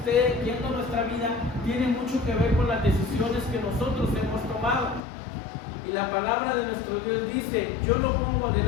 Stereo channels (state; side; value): drops out; right; at 5.0 s